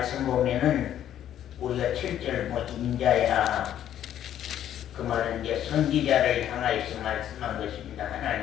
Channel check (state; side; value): quieter; right; 11.0 dB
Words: 보면은 우리가 7절 인자야 그 말은 이제 선지자를 향하여서 말씀한 것입니다.